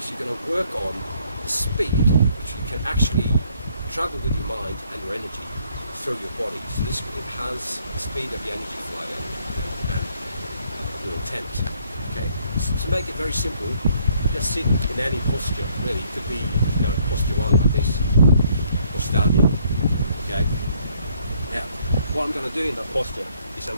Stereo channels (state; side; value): inverted; both; correlation -0.66